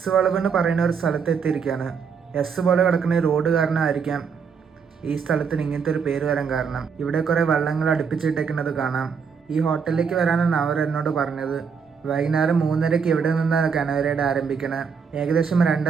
വളവ് എന്ന് പറയുന്ന ഒരു സ്ഥലത്ത് എത്തിയിരിക്കുകയാണ്. എസ് പോലെ കിടക്കുന്ന ഈ റോഡ് കാരണമായിരിക്കാം ഈ സ്ഥലത്തിന് ഇങ്ങനത്തെ ഒരു പേര് വരാൻ കാരണം. ഇവിടെ കുറേ വള്ളങ്ങൾ അടുപ്പിച്ചിട്ടേക്കുന്നത് കാണാം. ഈ ഹോട്ടലിലേക്ക് വരാനാണ് അവർ എന്നോട് പറഞ്ഞത്. വൈകുന്നേരം 3:30 ഇവിടെ നിന്നാണ് കനോയ് റൈഡ് ആരംഭിക്കണത്. ഏകദേശം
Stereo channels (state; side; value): quieter; left; 6.2 dB